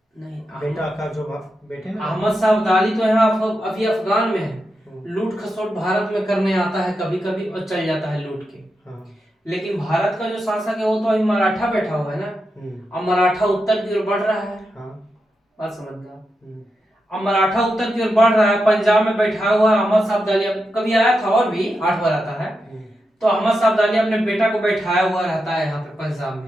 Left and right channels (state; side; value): normal; both; correlation 0.87